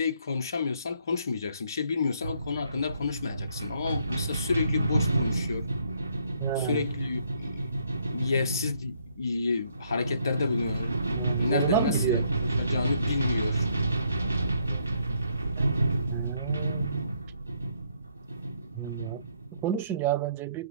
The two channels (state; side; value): inverted; both; correlation -0.70